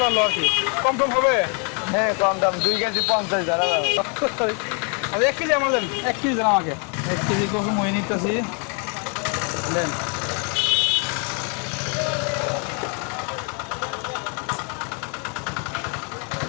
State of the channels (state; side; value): quieter; right; 37.1 dB